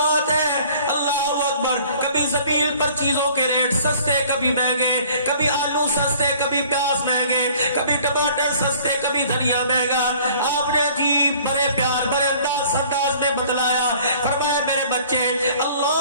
ہے, اللہ اکبر. کبھی زمین پر چیزوں کے ریٹ سستے, کبھی مہنگے, کبھی آلو سستے, کبھی پیاز مہنگے, کبھی ٹماٹر سستے, کبھی دھنیا مہنگا. آپ نے عجیب بڑے پیار بڑے انداز میں بتلایا, فرمایا میرے بچے,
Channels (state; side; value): inverted; both; correlation -0.52